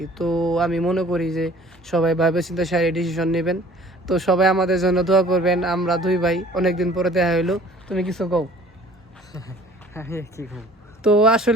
তো আমি মনে করি যে সবাই ভাবে চিন্তা সারি ডিসিশন নেবেন। তো সবাই আমাদের জন্য দোয়া করবেন। আমরা দুই ভাই অনেকদিন পরে দেখা হইলো। তুমি কিছু কও? তো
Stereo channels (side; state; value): both; normal; correlation 0.50